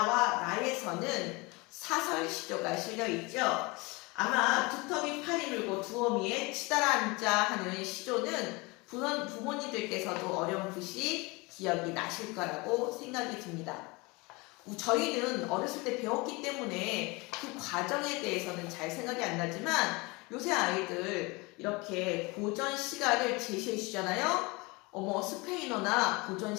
나에서는 사설 시조가 실려있죠. 아마 두터비 팔이 물고 두어미에 치달아 앉아 하는 시조는 부모님들께서도 어려운 부시 기억이 나실 거라고 생각이 듭니다. 저희는 어렸을 때 배웠기 때문에 그 과정에 대해서는 잘 생각이 안 나지만, 요새 아이들 이렇게 고전 시가를 제시해 주잖아요. 스페인어나 고전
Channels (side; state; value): right; quieter; 25.5 dB